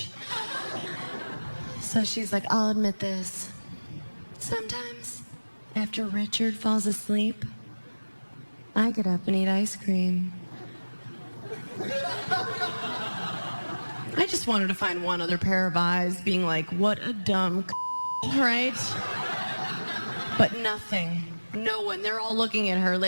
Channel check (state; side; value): inverted; both; correlation -1.00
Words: So she's like, I'll admit this. Sometimes, after Richard falls asleep, I get up and eat ice cream. I just wanted to find one other pair of eyes being like, what a dumb right? But nothing. No one. They're all looking at her